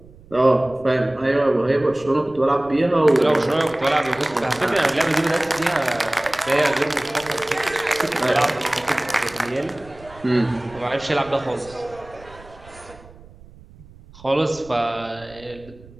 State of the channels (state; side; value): noise; right; rumble, 22 dB below the sound